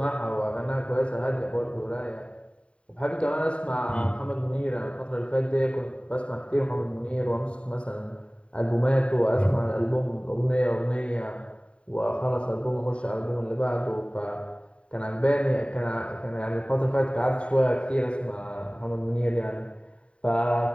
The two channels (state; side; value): late; right; 0.059 ms